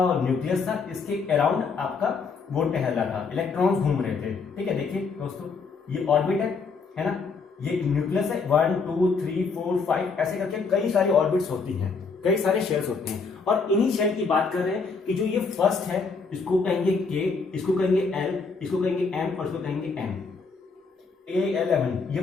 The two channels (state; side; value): quieter; right; 4.8 dB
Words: न्यूक्लियस था, इसके अराउंड आपका वो टहल रहा था, इलेक्ट्रॉन्स घूम रहे थे। ठीक है, देखिए दोस्तों ये ऑर्बिट है ना, ये न्यूक्लियस है, 1 2 3 4 5 ऐसे करके कई सारी ऑर्बिट्स होती हैं, कई सारे शेल्स होते हैं। और इन्हीं शेल की बात कर रहे हैं कि जो ये फर्स्ट है इसको कहेंगे के, इसको कहेंगे एल, इसको कहेंगे एम और इसको कहेंगे एन। A11 ये